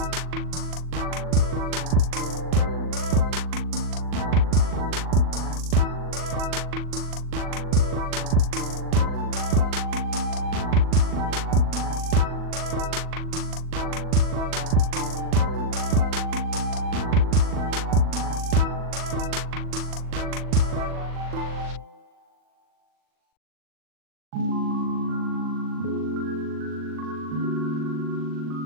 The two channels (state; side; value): late; left; 40 ms